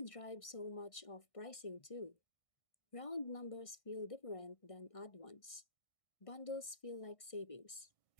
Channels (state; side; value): late; right; 1.6 ms